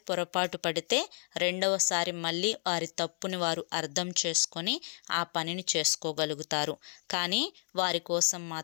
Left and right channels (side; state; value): right; silent; digital silence